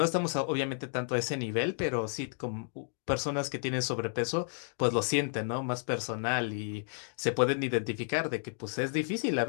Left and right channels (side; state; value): right; silent; digital silence